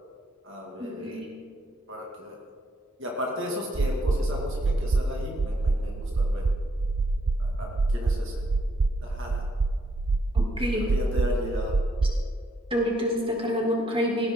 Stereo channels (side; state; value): both; normal; correlation 0.74